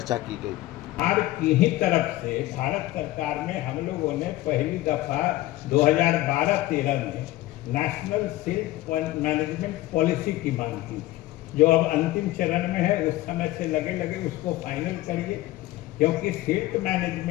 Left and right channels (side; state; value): right; quieter; 17.1 dB